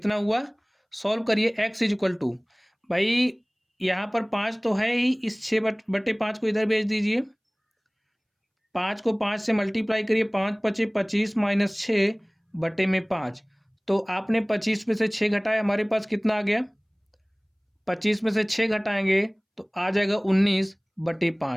हुआ। सॉल्व करिए। x इज इक्वल टू, भाई यहाँ पर 5 तो है ही, इस 6/5 को इधर भेज दीजिए। 5 को 5 से मल्टीप्लाई करिए, 5 × 5 = 25 माइनस 6/5। तो आपने 25 में से 6 घटाया, हमारे पास कितना आ गया? 25 में से 6 घटाएंगे तो आ जाएगा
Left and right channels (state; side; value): identical; both; correlation 1.00